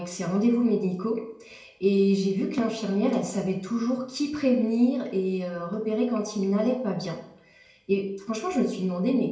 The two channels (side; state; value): both; identical; correlation 1.00